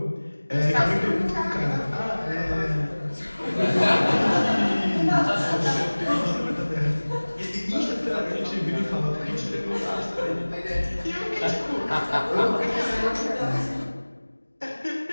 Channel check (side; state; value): both; inverted; correlation -1.00